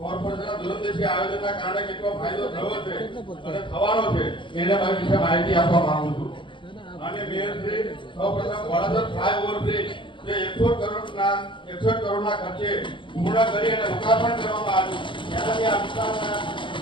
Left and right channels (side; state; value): right; late; 0.24 ms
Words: દૂરંદેશી આયોજનના કારણે કેટલો ફાયદો થયો છે અને થવાનો છે એના વિશે માહિતી આપવા માંગુ છું. અને મેયરશ્રી સૌપ્રથમ વડાસર ફ્લાયઓવર બ્રિજ જે 61 કરોડના ખર્ચે પૂર્ણ કરી અને લોકાર્પણ કરવામાં આવ્યું. એનાથી આ વિસ્તારના